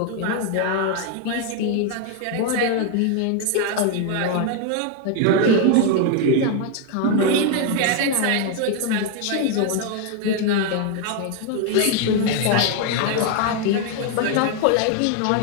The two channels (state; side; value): different; both; correlation 0.01